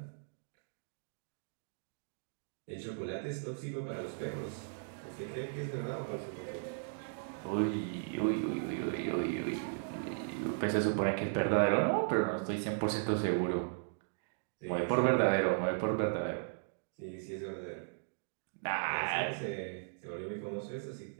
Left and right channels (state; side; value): silent; left; digital silence